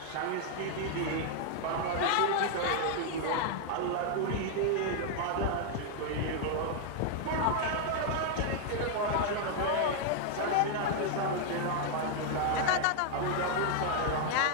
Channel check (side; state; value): both; different; correlation 0.00